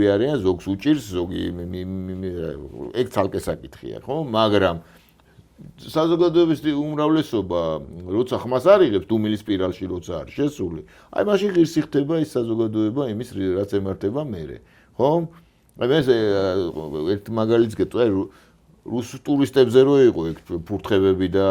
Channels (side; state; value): both; identical; correlation 1.00